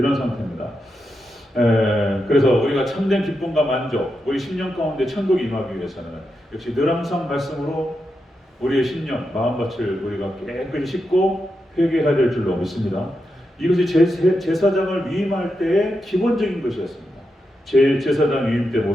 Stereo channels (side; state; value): both; normal; correlation 0.86